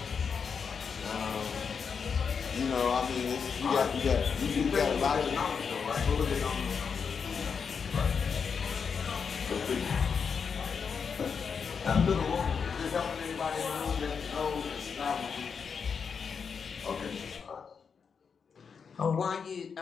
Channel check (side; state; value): right; quieter; 6.1 dB